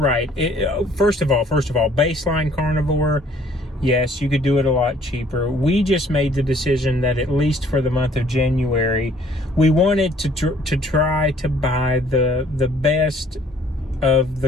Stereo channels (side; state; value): both; normal; correlation 0.58